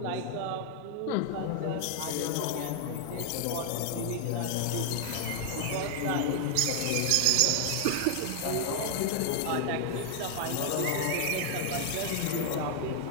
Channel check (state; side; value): different; both; correlation 0.00